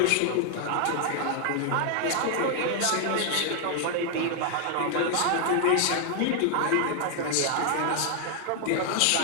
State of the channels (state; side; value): different; both; correlation 0.00